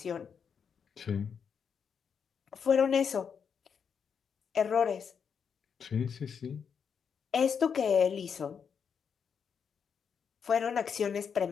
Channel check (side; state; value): right; quieter; 6.8 dB